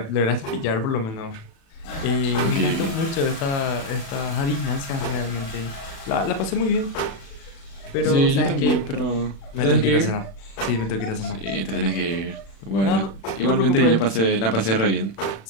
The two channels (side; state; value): right; late; 36 ms